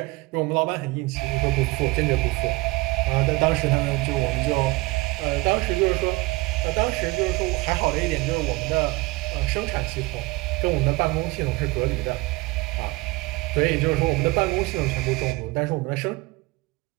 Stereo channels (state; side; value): quieter; left; 22.5 dB